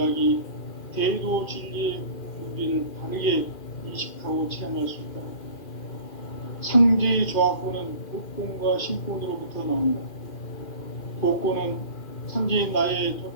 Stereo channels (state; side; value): late; right; 2.4 ms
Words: 대도 진리의 문제를 바르게 인식하고 체험할 수 있다. 상제의 조화권은 복권과 신권으로부터 나온다. 복권은 상제인 나의